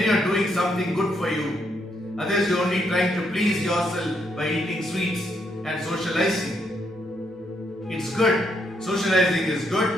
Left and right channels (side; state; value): both; normal; correlation 0.76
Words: you are doing something good for you. Otherwise, you are only trying to please yourself by eating sweets and socializing. It's good. Socializing is